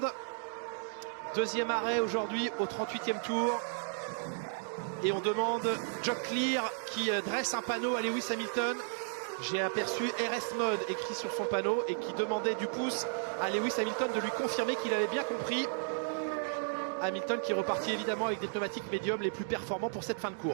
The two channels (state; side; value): silent; left; digital silence